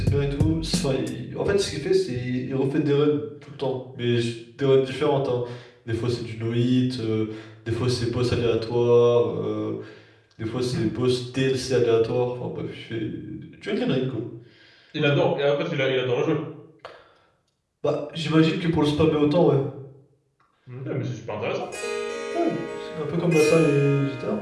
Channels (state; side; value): identical; both; correlation 1.00